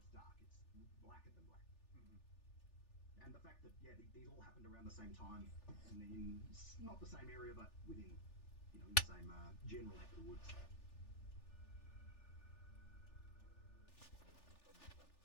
dark. It's blacker than black. And the fact that these all happened around the same time in not the same area, but within the same general neck of the woods.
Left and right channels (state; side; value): late; right; 3.4 ms